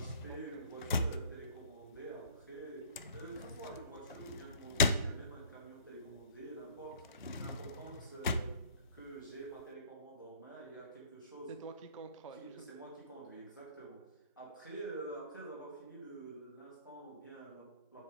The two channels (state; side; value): inverted; both; correlation -0.52